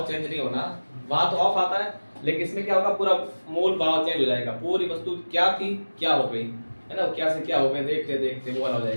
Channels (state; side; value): inverted; both; correlation -1.00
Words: चेंज नहीं होना। वहां तो ऑफ आता है, लेकिन इसमें क्या होगा, पूरा मूल भाव चेंज हो जाएगा। पूरी वस्तु क्या थी क्या हो गई, है ना, क्या से क्या हो गए, देखते देखते वो वाला हो